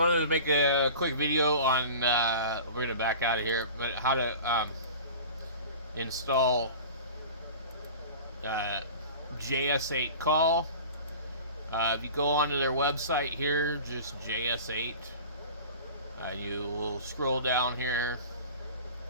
wanted to make a quick video on, we're going to back out of here, but how to install JS8CALL. If you go onto their website here, just JS8, you will scroll down here.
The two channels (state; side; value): inverted; both; correlation -0.39